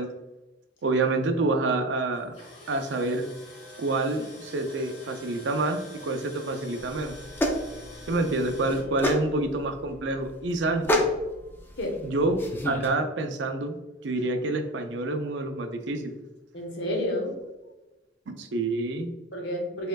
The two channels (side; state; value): both; normal; correlation 0.27